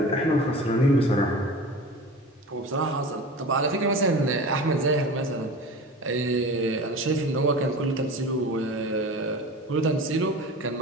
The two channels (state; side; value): normal; both; correlation 0.34